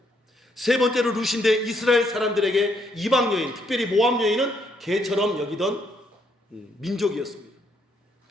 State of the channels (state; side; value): normal; both; correlation 0.72